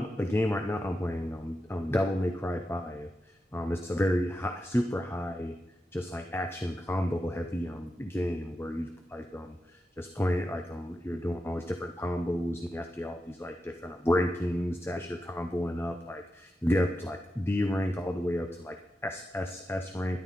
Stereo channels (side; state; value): both; normal; correlation 0.89